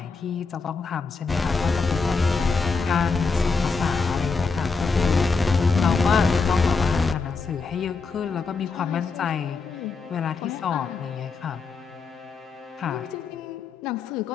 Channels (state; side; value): quieter; right; 4.5 dB